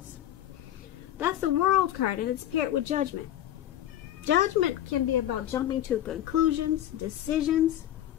That's the World card, and it's paired with Judgment. Judgment can be about jumping to conclusions, decisions,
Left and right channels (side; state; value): right; quieter; 12.2 dB